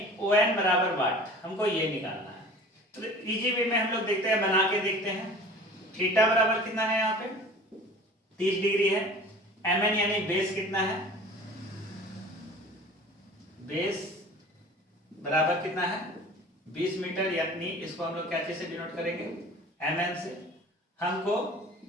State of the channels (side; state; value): both; normal; correlation 0.42